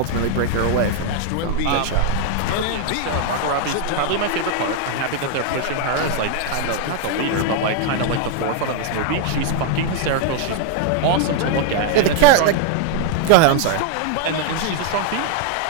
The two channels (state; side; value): different; both; correlation 0.00